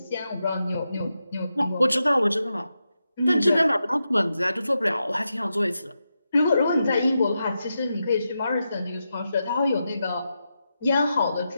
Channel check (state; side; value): inverted; both; correlation -0.87